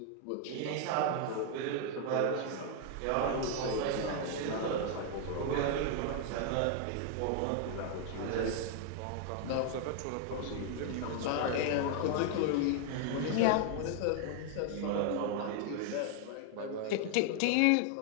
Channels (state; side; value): different; both; correlation 0.00